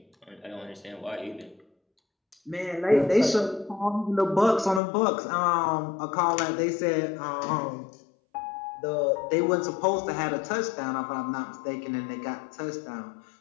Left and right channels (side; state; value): right; drops out; at 4.8 s